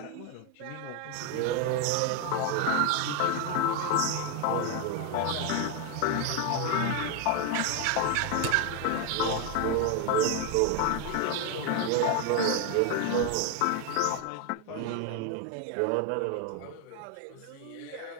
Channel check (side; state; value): both; different; correlation 0.01